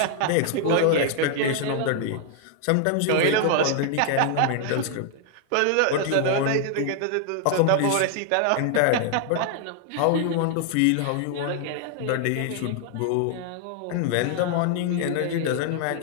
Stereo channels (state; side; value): different; both; correlation 0.00